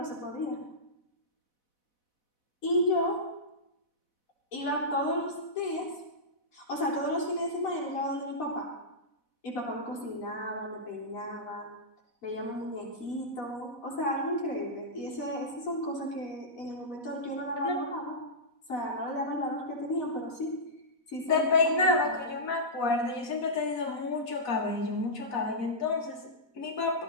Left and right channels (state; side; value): late; right; 4.1 ms